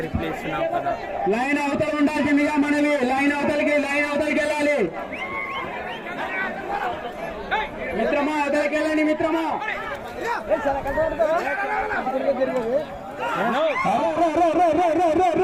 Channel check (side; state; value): both; identical; correlation 1.00